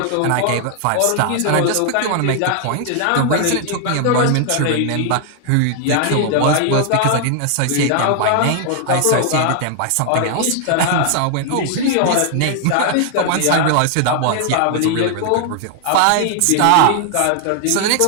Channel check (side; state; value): both; different; correlation 0.00